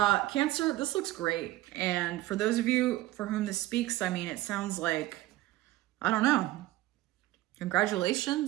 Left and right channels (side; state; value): left; quieter; 16.8 dB